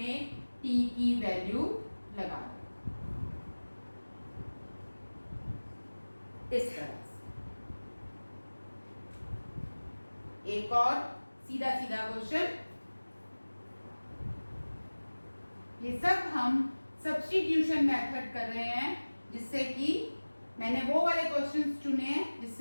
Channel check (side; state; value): both; inverted; correlation -1.00